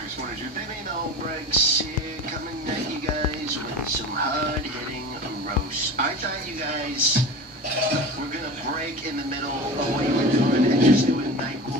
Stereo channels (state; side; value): normal; both; correlation 0.31